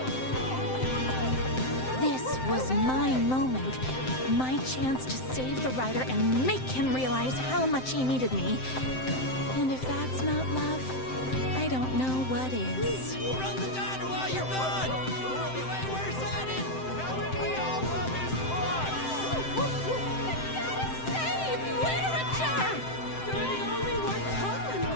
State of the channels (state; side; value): late; right; 7.7 ms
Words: This was my moment. My chance to save the rider and make him realize how much he needed me. And if that's not love, I don't know what is. Run the diner while you're gone! We'll be way worse at it! We all love his blood! Save literature! You're the only one tough and